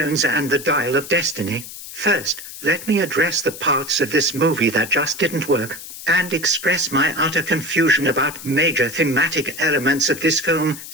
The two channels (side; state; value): left; noise; hiss, 12 dB below the sound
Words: and the Dial of Destiny. First, let me address the parts of this movie that just didn't work, and express my utter confusion about major thematic elements of this film.